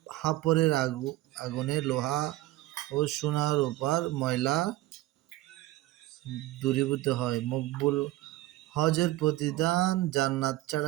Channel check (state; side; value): quieter; left; 17.0 dB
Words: হাপরের আগুনে লোহা ও সোনা রূপার ময়লা দূরীভূত হয়। মকবুল হজের প্রতিদান জান্নাত